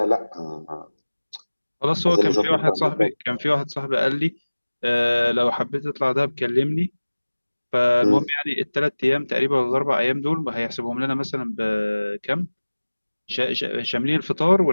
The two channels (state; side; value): inverted; both; correlation -1.00